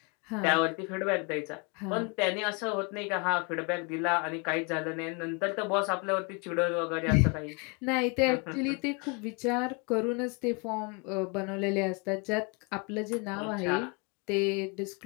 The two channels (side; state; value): right; quieter; 32.2 dB